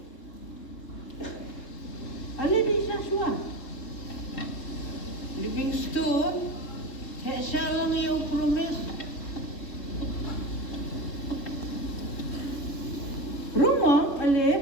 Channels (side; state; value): right; late; 3.7 ms